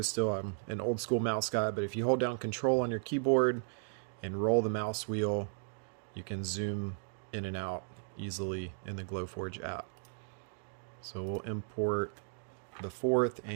still. I'm an old school mouse guy, but if you hold down control on your keyboard and roll the mouse wheel, you can zoom in and out easily in the Glowforge app. So we'll import the fourth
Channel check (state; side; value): silent; left; digital silence